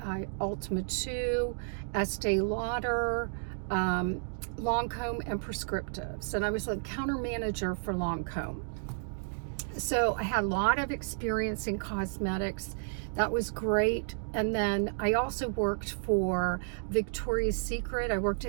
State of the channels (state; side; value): silent; left; digital silence